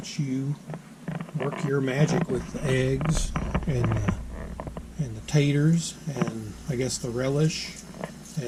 you work your magic with the eggs and the taters and I guess the relish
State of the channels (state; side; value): identical; both; correlation 1.00